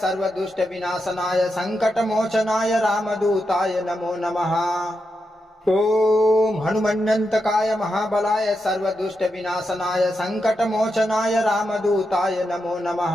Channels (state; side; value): normal; both; correlation 0.86